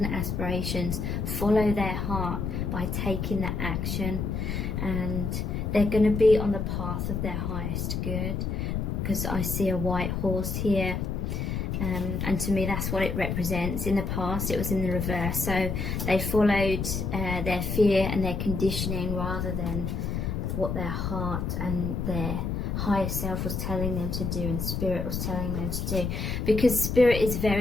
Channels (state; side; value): noise; left; rumble, 2 dB below the sound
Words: aspirations, follow their heart by taking that action, and they're going to be on the path of their highest good, because I see a white horse here. And to me that's what it represents. In the past it was in the reverse, so they followed their fear and their conditioning rather than what their heart and their higher self was telling them to do and spirit was telling them to do, because spirit is